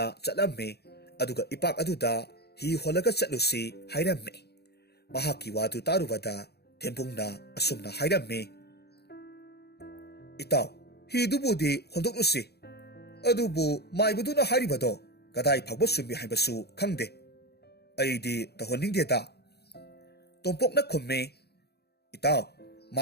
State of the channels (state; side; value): late; right; 0.47 ms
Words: ꯆꯠꯂꯝꯃꯤ ꯑꯗꯨꯒ ꯏꯄꯥꯛ ꯑꯗꯨꯗ हि ꯍꯣꯜꯂꯒ ꯆꯠꯂꯨꯁꯤ ꯍꯥꯏꯔꯝꯃꯤ꯫ ꯃꯍꯥꯛꯀꯤ ꯋꯥꯗꯨ ꯇꯥꯔꯨꯕꯗ ꯊꯦꯝꯕꯨꯡꯅ ꯑꯁꯨꯝꯅ ꯍꯥꯏꯔꯝꯃꯤ, ꯏꯇꯥꯎ, ꯍꯤꯗꯨꯕꯨꯗꯤ ꯍꯣꯟꯗꯣꯛꯂꯨꯁꯤ, ꯑꯗꯨꯕꯨ ꯃꯥꯏꯕꯗꯨꯅ ꯍꯥꯏꯔꯤꯕꯗꯣ ꯀꯗꯥꯏ ꯐꯥꯎꯕ ꯆꯨꯝꯃꯤ ꯍꯥꯏꯕꯁꯨ ꯈꯪꯗꯦ꯫ ꯑꯩꯗꯤ ꯇꯧꯍꯟꯅꯤꯡꯗꯦꯗ꯫ ꯇꯣꯝꯄꯣꯛꯅ ꯈꯨꯝꯃꯤ, ꯏꯇꯥꯎ,